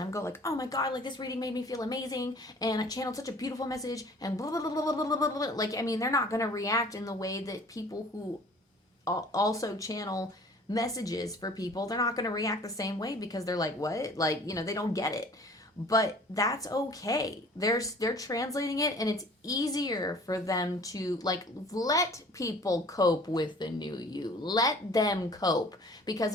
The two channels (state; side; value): normal; both; correlation 0.49